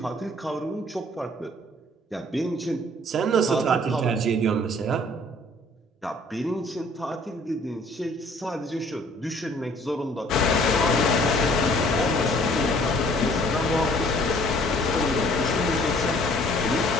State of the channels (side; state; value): both; normal; correlation 0.57